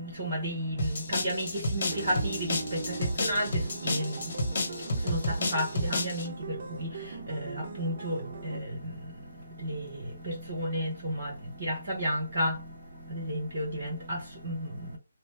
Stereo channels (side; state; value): both; inverted; correlation -0.71